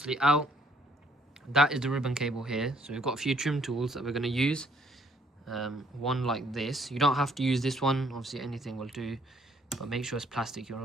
out. That is the ribbon cable here. So we've got a few trim tools that we're going to use. One like this. You don't have to use this one. Obviously anything will do. But make sure it's plastic.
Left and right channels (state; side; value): normal; both; correlation 0.65